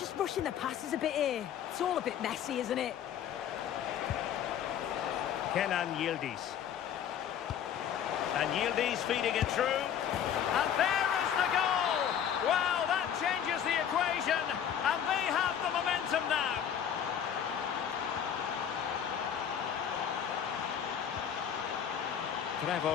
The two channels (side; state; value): right; quieter; 9.0 dB